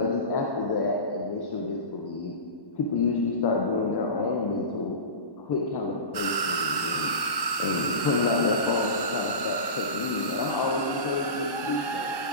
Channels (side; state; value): right; late; 1.1 ms